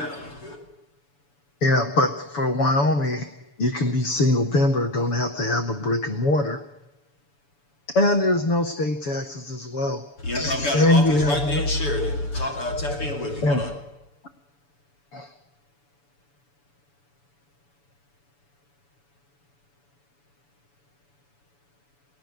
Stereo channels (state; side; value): late; right; 7.0 ms